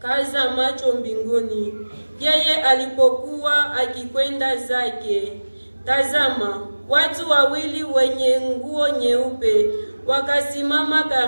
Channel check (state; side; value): inverted; both; correlation -1.00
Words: macho mbinguni, yeye alipokuwa akikwenda zake, tazama, watu wawili wenye nguo nyeupe wakasimama